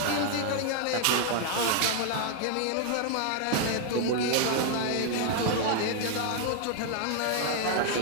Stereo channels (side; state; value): both; different; correlation 0.00